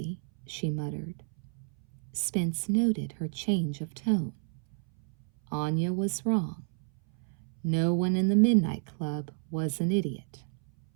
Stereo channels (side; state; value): left; silent; 58 dB below the other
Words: she muttered. Spence noted her change of tone. Anya was wrong. No one in the Midnight Club was an idiot,